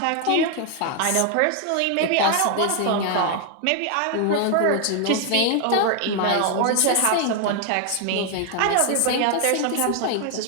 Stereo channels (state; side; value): different; both; correlation 0.00